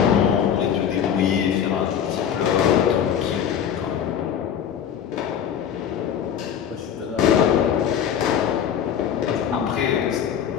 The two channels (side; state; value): right; quieter; 8.6 dB